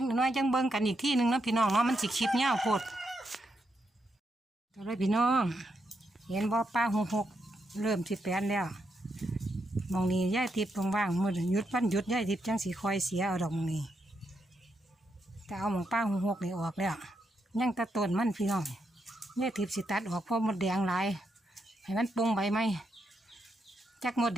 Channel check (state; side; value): normal; both; correlation 0.81